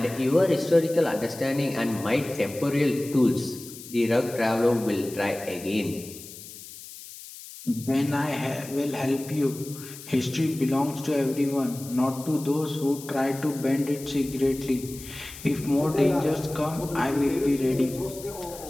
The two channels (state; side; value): noise; left; hiss, 15 dB below the sound